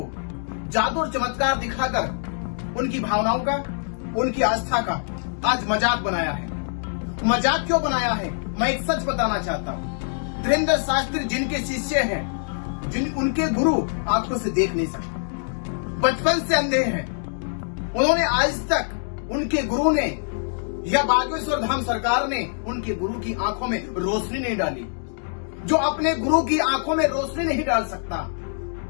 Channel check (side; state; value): right; silent; digital silence